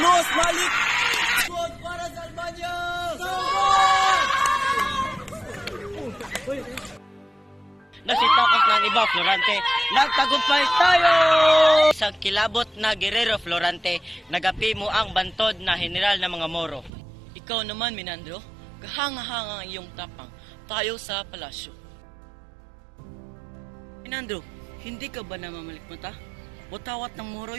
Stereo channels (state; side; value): drops out; left; at 16.9 s